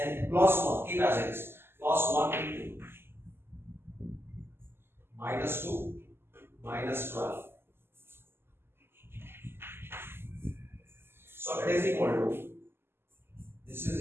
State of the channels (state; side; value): late; left; 0.11 ms